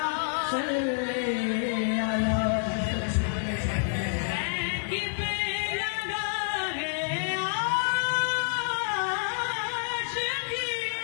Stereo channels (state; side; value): silent; right; digital silence